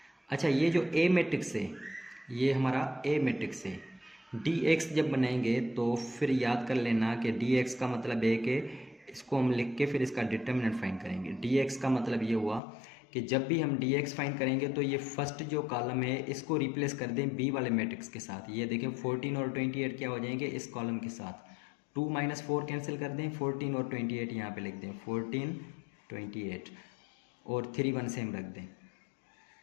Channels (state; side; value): drops out; right; at 12.6 s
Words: अच्छा ये जो ए मैट्रिक्स है ये हमारा ए मैट्रिक्स है। डी एक्स जब बनाएंगे तो फिर याद कर लेना कि डी एक्स का मतलब है कि इसको हम लिख के फिर इसका डिटर्मिनेंट फाइंड करेंगे। डी एक्स का मतलब ये हुआ कि जब भी हम डी एक्स फाइंड करेंगे तो ये फर्स्ट जो कॉलम है इसको रिप्लेस कर दें बी वाले मैट्रिक्स के साथ। ये देखें 14 और 28 क्या हो जाएंगे इस कॉलम के साथ, 2 - 4 कैंसिल कर दें, 14 और 28 यहाँ पे लिख दें, 14 28 और 3 1 सेम रख दें।